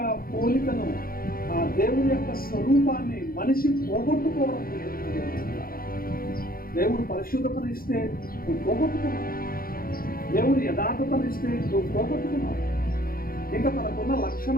పోలికను, ఆ దేవుని యొక్క స్వరూపాన్ని మనిషి పోగొట్టుకోవడం. దేవుడు పరిశుద్ధతను ఇస్తే నువ్వు పోగొట్టుకున్నావు, దేవుడు యథార్థతను ఇస్తే నువ్వు పోగొట్టుకున్నావు, ఇంకా తనకున్న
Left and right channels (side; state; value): right; late; 0.42 ms